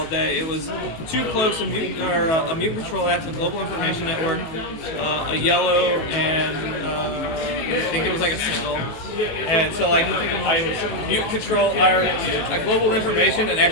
day. It was 2 cloaks, a mutant control act, a global information network, a yellow, and I think it was like a single. And so like I mutant control, I global information, and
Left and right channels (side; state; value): right; late; 18 ms